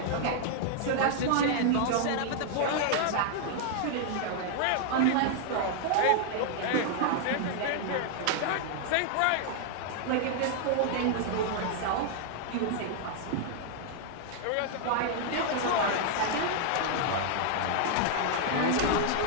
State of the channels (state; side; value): different; both; correlation 0.00